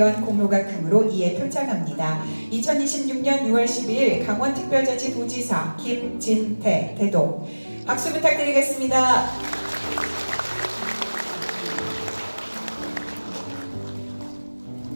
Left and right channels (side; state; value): both; inverted; correlation -1.00